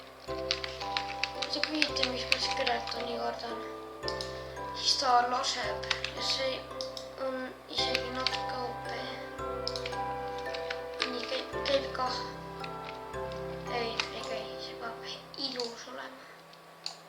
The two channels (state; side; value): identical; both; correlation 1.00